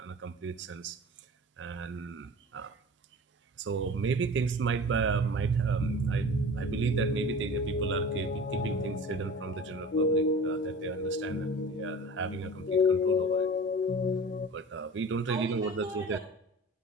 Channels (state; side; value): normal; both; correlation 0.38